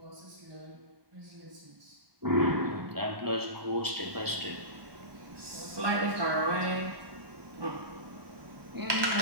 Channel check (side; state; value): left; late; 1.2 ms